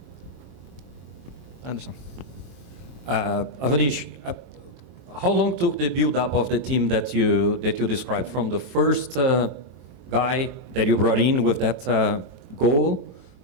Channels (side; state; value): left; late; 23 ms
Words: Anderson. Avanish, how long took the build-up of the team that you described, from the first guy that you brought in with that goal